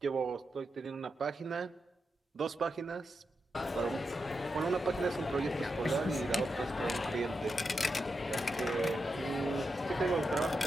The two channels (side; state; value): both; normal; correlation 0.87